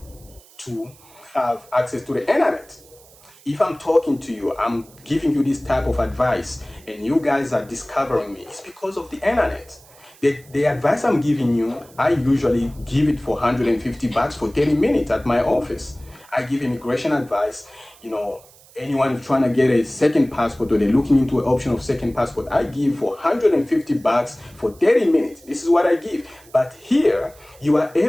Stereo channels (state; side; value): noise; right; hiss, 25 dB below the sound